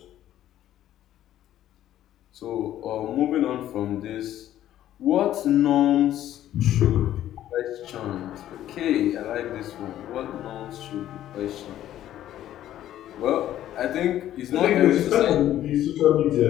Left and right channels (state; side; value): quieter; right; 12.4 dB